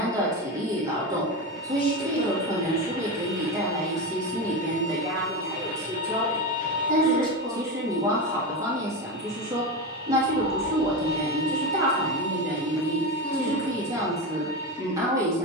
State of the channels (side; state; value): both; normal; correlation 0.18